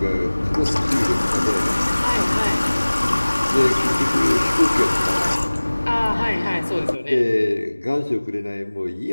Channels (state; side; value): inverted; both; correlation -1.00